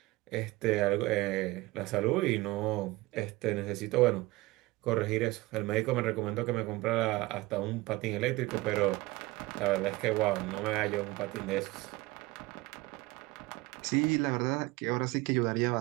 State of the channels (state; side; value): quieter; left; 20.9 dB